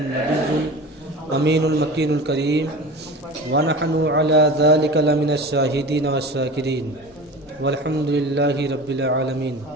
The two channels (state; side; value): normal; both; correlation 0.34